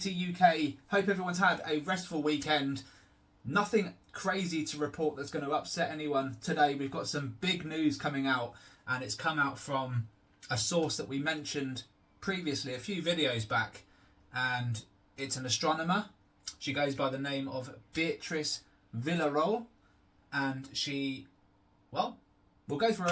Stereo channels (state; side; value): identical; both; correlation 1.00